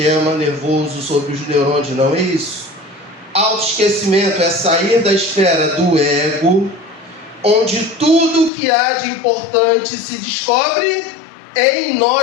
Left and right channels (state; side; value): drops out; right; at 8.5 s